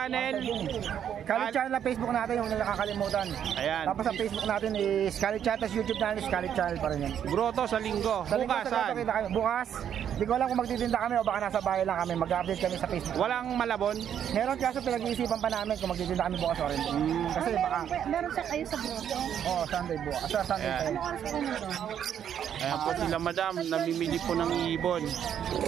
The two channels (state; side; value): quieter; left; 9.2 dB